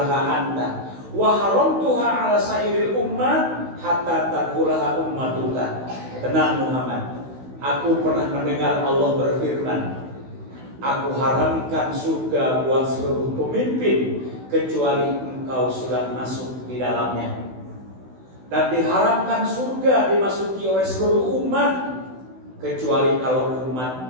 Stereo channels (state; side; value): late; left; 16 ms